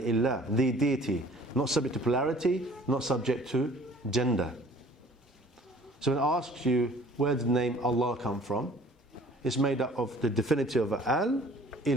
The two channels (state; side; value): normal; both; correlation 0.52